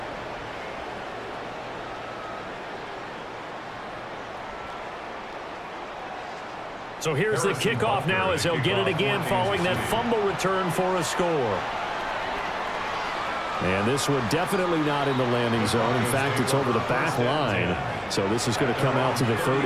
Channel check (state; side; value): identical; both; correlation 1.00